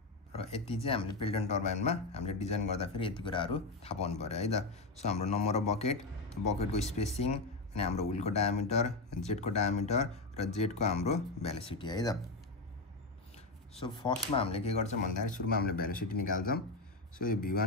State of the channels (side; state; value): right; quieter; 3.4 dB